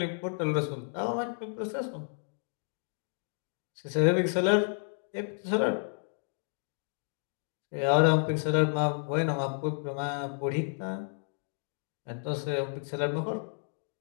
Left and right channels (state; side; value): silent; right; digital silence